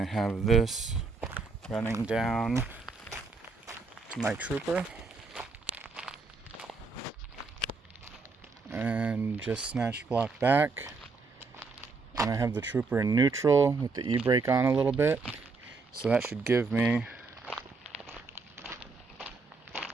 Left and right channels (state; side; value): quieter; left; 4.2 dB